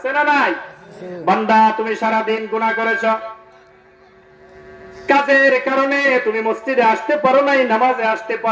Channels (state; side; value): identical; both; correlation 1.00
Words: না নাই? বান্দা তুমি সারা দিন গুনাহ করেছো, কাজের কারণে তুমি মসজিদে আসতে পারো নাই, নামাজে আসতে